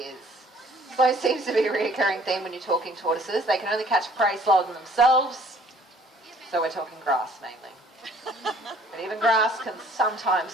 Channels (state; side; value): normal; both; correlation 0.57